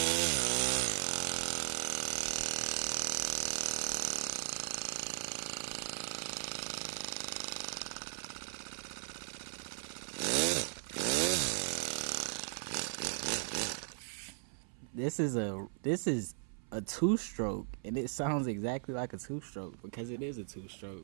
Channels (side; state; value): left; silent; 53 dB below the other